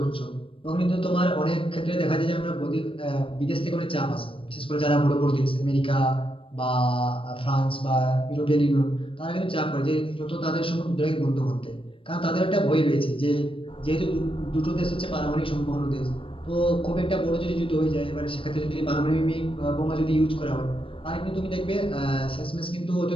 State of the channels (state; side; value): late; right; 0.26 ms